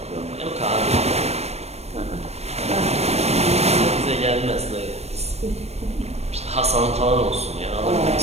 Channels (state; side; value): late; left; 0.31 ms